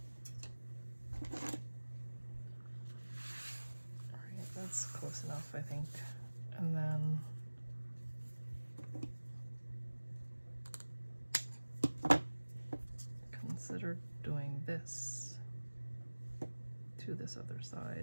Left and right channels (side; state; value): both; inverted; correlation -1.00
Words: That's close enough, I think. And then consider doing this to this other